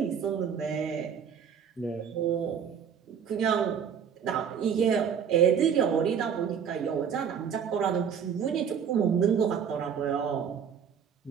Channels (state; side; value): quieter; left; 7.6 dB